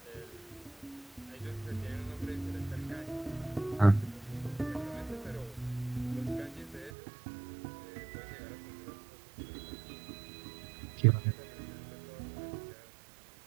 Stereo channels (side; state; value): left; drops out; at 6.9 s